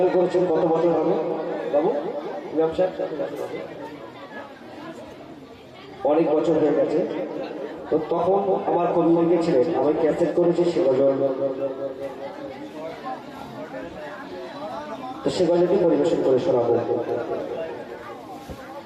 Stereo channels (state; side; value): identical; both; correlation 1.00